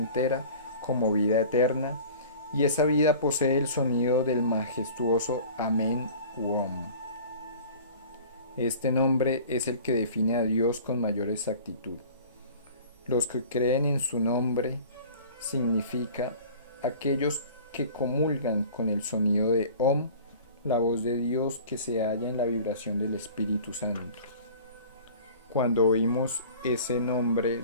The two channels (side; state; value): both; inverted; correlation -0.43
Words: como vida eterna, y esa vida posee el sonido del majestuoso Amén u Om. Este nombre es el que define a Dios con mayor exactitud. Los que creen en su nombre significa aquellos que comulgan con el sonido de Om, la voz de Dios que se halla en la vibración del Espíritu Santo. Cuando oímos ese nombre